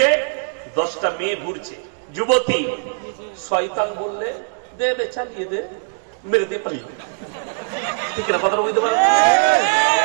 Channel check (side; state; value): left; silent; digital silence